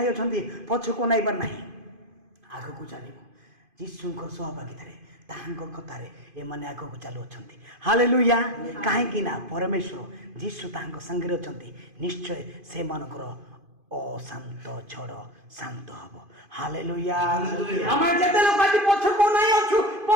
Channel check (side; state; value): left; late; 2.5 ms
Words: ଅଛନ୍ତି ପଛକୁ ନାଇବାର ନାହିଁ, ଆଗକୁ ଚାଲିବ। ଯୀଶୁଙ୍କ ସହଭାଗିତାରେ ତାହାଙ୍କ କଥାରେ ଏମାନେ ଆଗକୁ ଚାଲୁଅଛନ୍ତି। ହାଲେଲୁୟା। କାହିଁକି ନା ପରମେଶ୍ୱର ଯୀଶୁ ତାହାଙ୍କ ସାଙ୍ଗରେ ଅଛନ୍ତି। ନିଶ୍ଚୟ ସେମାନଙ୍କର ଅଶାନ୍ତ ଝଡ଼ ଶାନ୍ତ ହବ। ହାଲେଲୁୟା। ଆମେ ଯେତେ ଲୋକ ଆଜି ପଛକୁ ନାଇଁ ଅଛୁ,